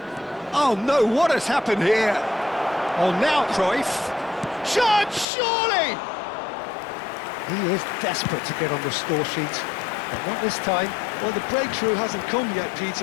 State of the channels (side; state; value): right; drops out; at 5.2 s